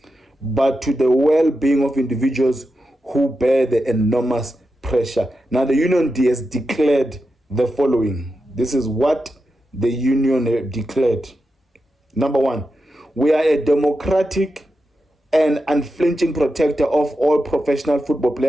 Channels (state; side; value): normal; both; correlation 0.89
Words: but to the well-being of individuals who bear the enormous pressure. Now, the union has declared the following. This is what the union declared. Number one, We are a democratic and unflinching protector of all professional football